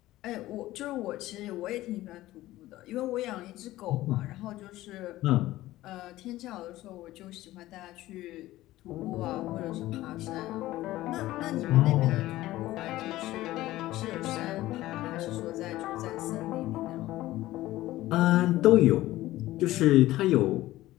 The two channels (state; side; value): quieter; right; 16.2 dB